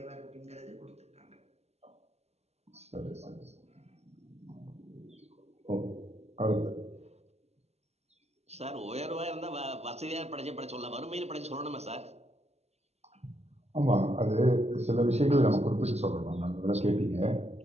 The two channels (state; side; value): late; left; 0.31 ms